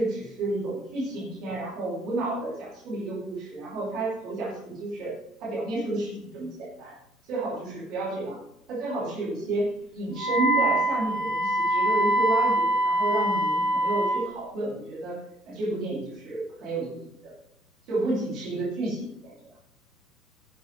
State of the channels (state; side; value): normal; both; correlation 0.63